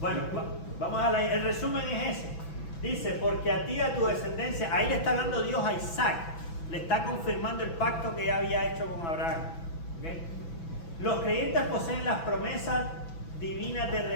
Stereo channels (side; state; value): right; late; 6.0 ms